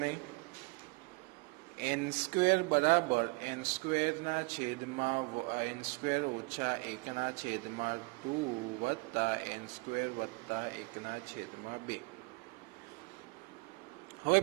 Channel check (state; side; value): quieter; left; 28.3 dB